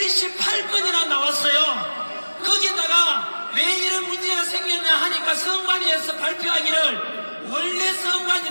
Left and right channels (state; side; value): inverted; both; correlation -1.00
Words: 나왔어요. 거기다가 왜 이런 문제가 생겼냐 하니까 선관위에서 발표하기를 원래